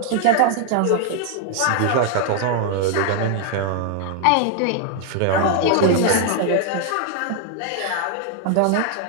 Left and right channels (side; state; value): both; different; correlation 0.00